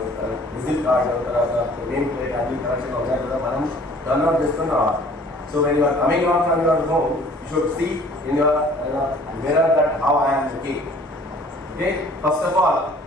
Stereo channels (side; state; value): both; normal; correlation 0.53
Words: విజిట్ కార్డు తర్వాత నేమ్ ప్లేట్ అన్ని కరెక్షన్ ఉన్నాయి కదా మనం టర్న్అవుట్ చేస్తున్నాం. So when you are coming out from your home you should see in your mirror that how I am looking. Okay, first of all